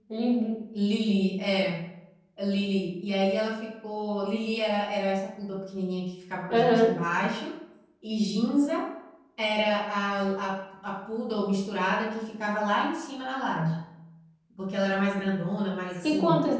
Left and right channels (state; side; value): identical; both; correlation 1.00